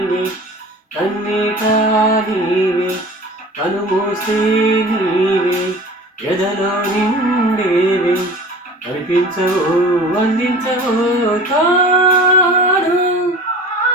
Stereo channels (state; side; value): normal; both; correlation 0.40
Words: కన్నీట నీవే కనుమూస్తే నీవే ఎదలో నిండేవే కనిపించవో వందించవో తాడు